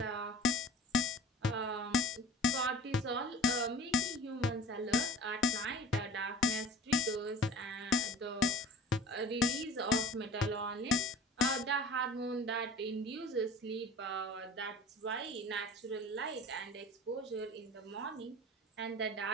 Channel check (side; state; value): both; normal; correlation 0.44